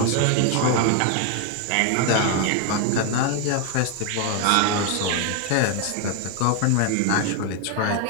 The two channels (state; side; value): different; both; correlation 0.01